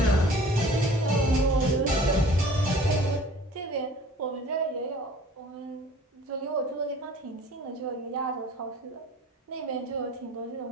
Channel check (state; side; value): normal; both; correlation 0.48